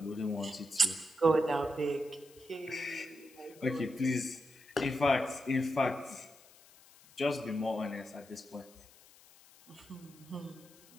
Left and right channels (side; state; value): left; noise; hiss, 24 dB below the sound